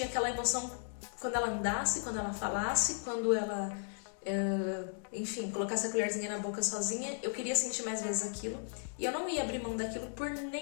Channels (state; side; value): silent; right; 54 dB below the other